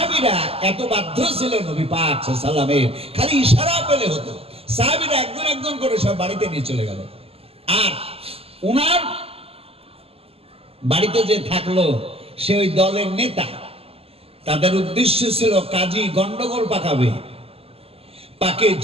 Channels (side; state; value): left; late; 0.28 ms